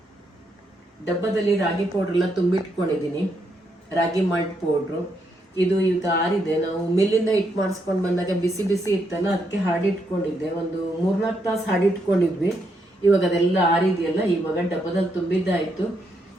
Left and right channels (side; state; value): both; normal; correlation 0.78